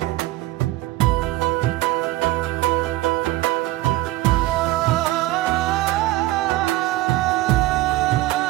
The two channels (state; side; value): quieter; left; 17.6 dB